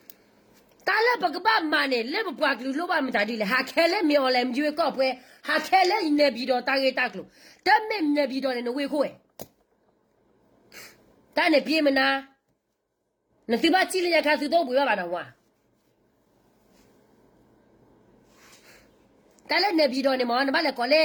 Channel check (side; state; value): both; identical; correlation 1.00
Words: တားလက်ပကပမနဲ့လက်ပွားကလူလိုပါမတာဒီလေဟာခဲလက်မြော်လဲရွေးကောက်ပွဲဟာခဲလက်နေပြီးတော့တာကေတက်လို့တမက်နေပြီးတော့နေဝေခိုးတာနဲ့ပြေးမနာနစီဘာချီလျာခါစုတော့ဘူးရပါတော့ဝါတာလည်းနေပြီးတော့နေမောနမလည်းကောလဲ